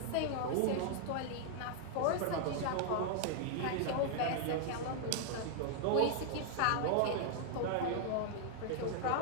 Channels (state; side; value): different; both; correlation -0.01